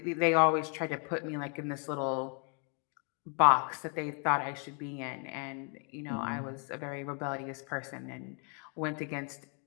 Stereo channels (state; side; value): quieter; right; 38.5 dB